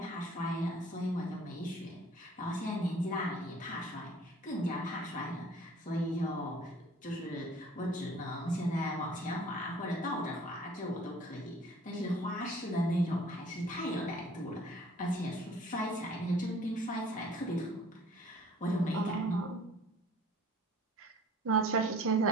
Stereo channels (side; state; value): both; normal; correlation 0.51